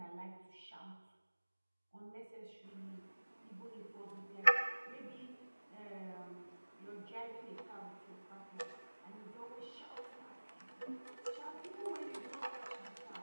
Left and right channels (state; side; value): inverted; both; correlation -1.00